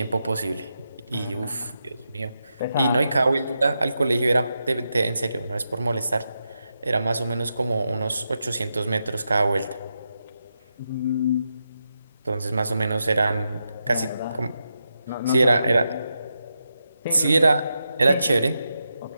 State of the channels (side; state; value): both; inverted; correlation -0.87